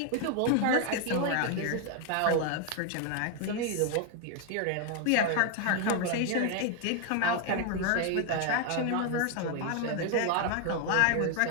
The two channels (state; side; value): different; both; correlation 0.00